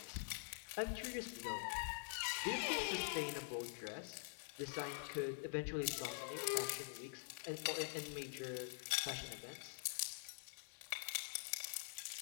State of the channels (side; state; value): right; silent; digital silence